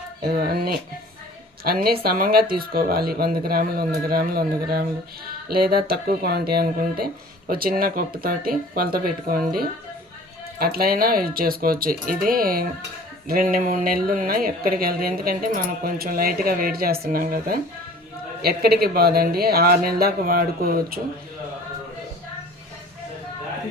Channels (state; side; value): normal; both; correlation 0.46